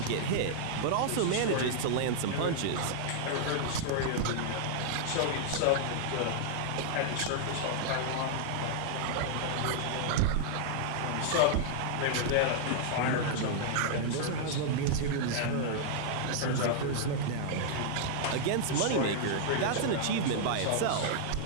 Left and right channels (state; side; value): different; both; correlation -0.01